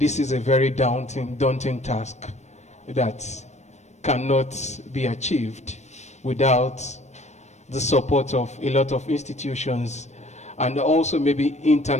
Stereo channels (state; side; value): late; right; 0.33 ms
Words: is a very daunting task that cannot be achieved without the support of a lot of institutions and also maybe